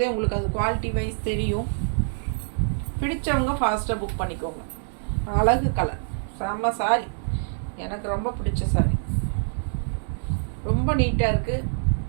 உங்களுக்கு அது குவாலிட்டி வைஸ் தெரியும். பிடிச்சவங்க ஃபாஸ்ட்டாக புக் பண்ணிக்கோங்க. அழகு கலர், செம்ம சாரி. எனக்கு ரொம்ப பிடிச்ச சாரி. ரொம்ப நீட்டாக இருக்குது.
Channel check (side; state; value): left; silent; digital silence